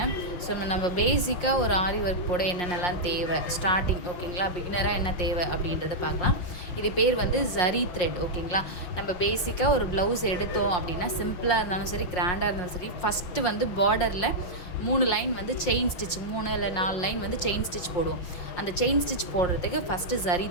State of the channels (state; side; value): late; right; 5.6 ms